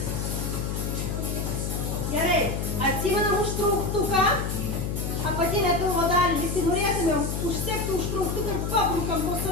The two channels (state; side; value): noise; left; hum, 2 dB below the sound